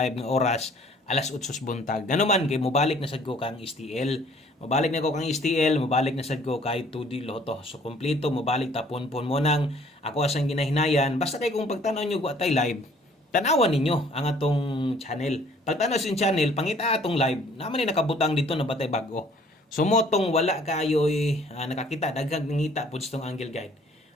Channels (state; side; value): normal; both; correlation 0.57